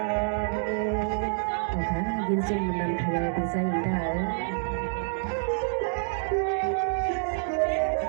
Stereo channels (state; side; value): silent; left; digital silence